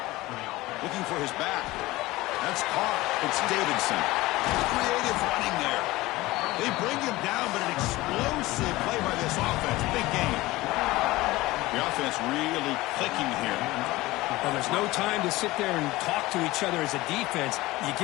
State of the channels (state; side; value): quieter; right; 19.1 dB